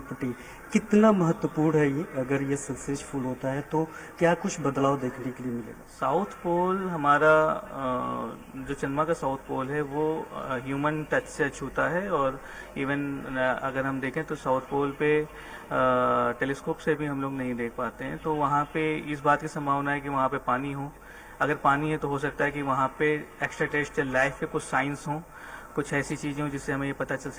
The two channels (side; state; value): both; identical; correlation 1.00